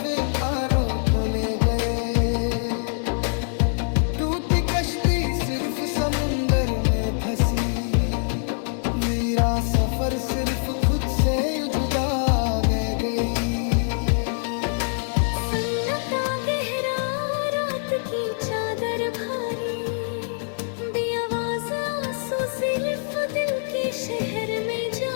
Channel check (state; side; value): silent; right; digital silence